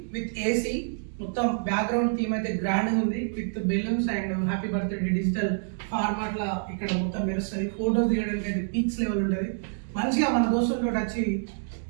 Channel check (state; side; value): silent; left; digital silence